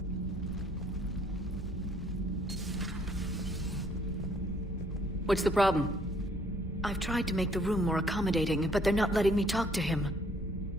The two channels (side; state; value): both; normal; correlation 0.63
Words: What's the problem? I've tried to make the room more accommodating, but they're not letting me talk to him.